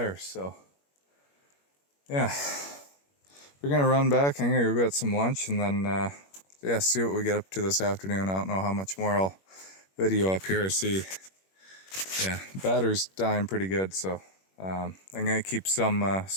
So yeah, we're gonna run back. I'm gonna go get some lunch, and then yeah, see what we get up to this afternoon. I don't know how much more I'll video up here. I see, yeah, battery's dying pretty good, so I'm gonna keep some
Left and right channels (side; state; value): right; late; 21 ms